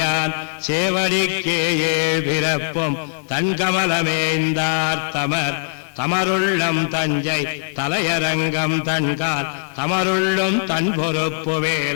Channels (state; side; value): silent; right; 66 dB below the other